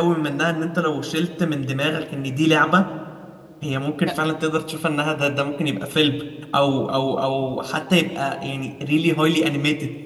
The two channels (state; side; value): identical; both; correlation 1.00